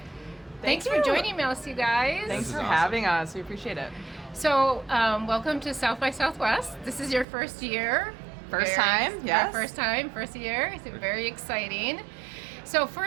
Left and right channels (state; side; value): drops out; left; at 7.2 s